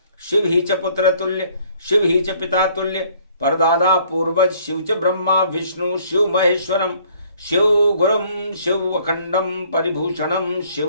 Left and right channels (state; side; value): inverted; both; correlation -0.60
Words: शिव ही च पुत्र तुल्य शिव ही च पिता तुल्य। परदादा पूर्वज शिव च ब्रह्मा विष्णु शिव महेश्वरम शिव गुरुम शिव अखंडम परिभूषणम